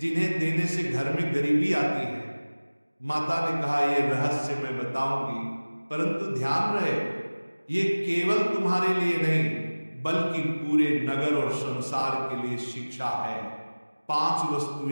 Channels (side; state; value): both; inverted; correlation -1.00